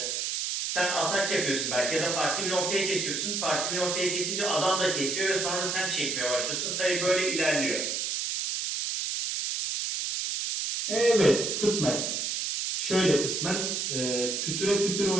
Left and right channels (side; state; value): right; noise; hiss, 1 dB below the sound